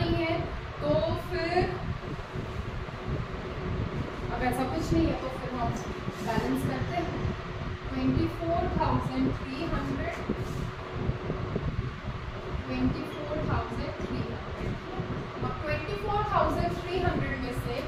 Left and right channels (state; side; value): identical; both; correlation 1.00